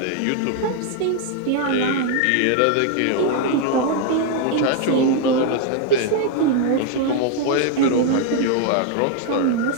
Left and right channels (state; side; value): different; both; correlation 0.00